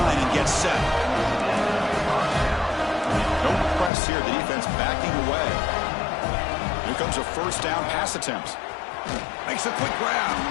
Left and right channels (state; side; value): drops out; right; at 3.9 s